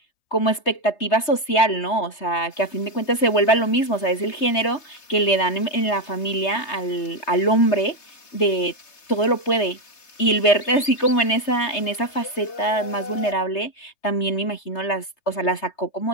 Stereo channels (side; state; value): right; late; 3.3 ms